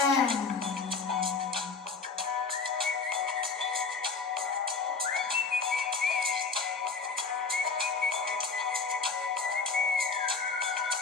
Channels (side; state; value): right; quieter; 4.7 dB